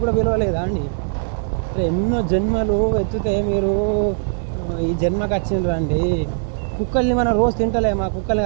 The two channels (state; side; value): silent; left; 65 dB below the other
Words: కూడా విలువలేదా అండి? ఎన్నో జన్మలు ఎత్తితే మీరు ఈ జన్మకు వచ్చిండ్రండి. కుక్కల్ని మనం రోజు తింటలేమా? కుక్కల్ని